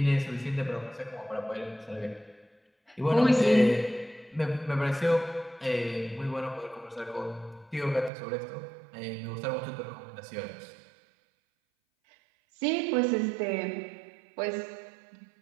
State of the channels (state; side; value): drops out; left; at 8.1 s